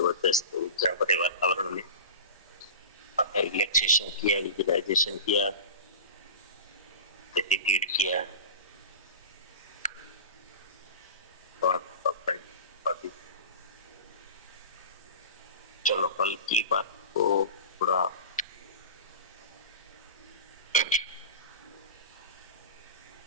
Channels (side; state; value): both; inverted; correlation -0.33